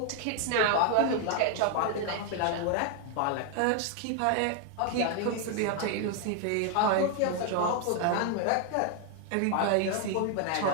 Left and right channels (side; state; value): both; different; correlation 0.00